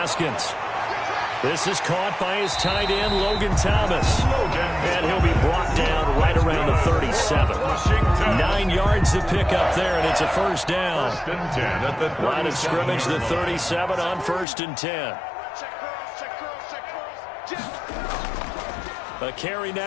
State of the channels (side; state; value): right; drops out; at 14.5 s